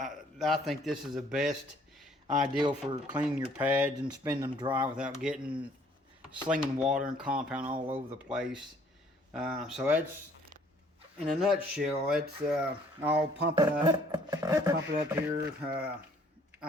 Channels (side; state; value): both; normal; correlation 0.60